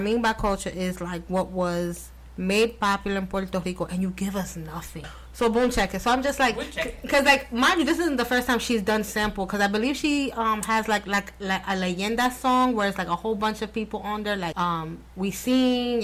by culture is like what was made popular in Puerto Rico, and you give us nothing. So boom, check it. So I'm just like, because like, mind you, this isn't the first time she's done sample, because I believe she has like a leyenda song where it's like a whole bunch of people on there, like Wisin,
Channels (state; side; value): identical; both; correlation 1.00